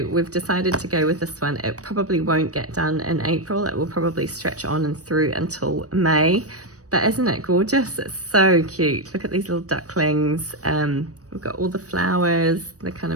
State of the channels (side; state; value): left; late; 0.66 ms